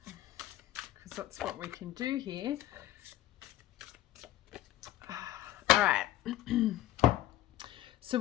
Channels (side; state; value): right; quieter; 13.9 dB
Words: that's what we can do here. All right. So